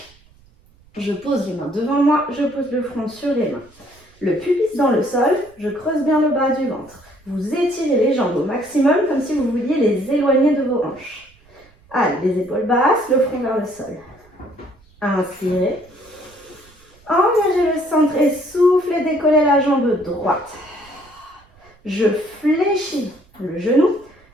Je pose les mains devant moi, je pose le front sur les mains. Le pubis dans le sol, je creuse bien le bas du ventre. Vous étirez les jambes au maximum comme si vous vouliez les éloigner de vos hanches. Allez, les épaules basses, le front vers le sol. Inspirez. Engagez le centre et soufflez, décollez la jambe droite. Je fléchis le genou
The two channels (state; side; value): noise; right; rumble, 29 dB below the sound